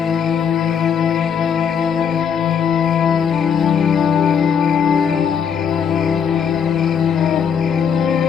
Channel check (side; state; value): right; quieter; 7.3 dB